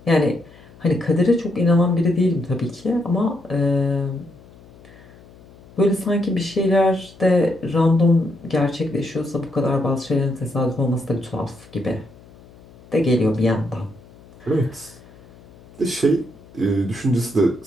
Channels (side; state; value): left; noise; hum, 24 dB below the sound